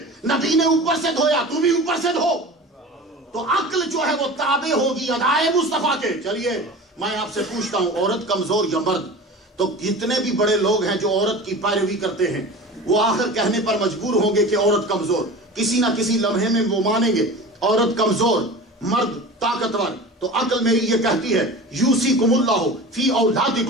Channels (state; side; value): normal; both; correlation 0.35